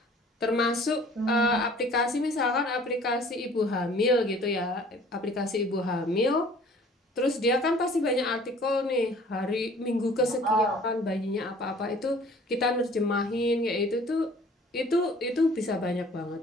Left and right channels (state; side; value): normal; both; correlation 0.52